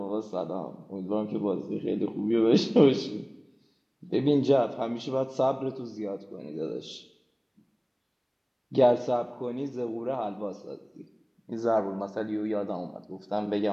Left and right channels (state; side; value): identical; both; correlation 1.00